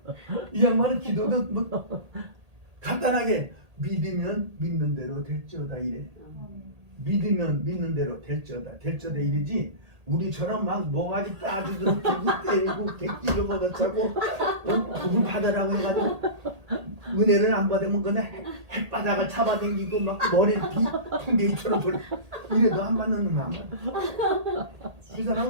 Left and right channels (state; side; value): late; left; 1.8 ms